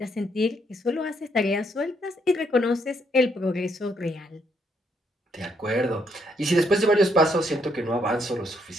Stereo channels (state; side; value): normal; both; correlation 0.73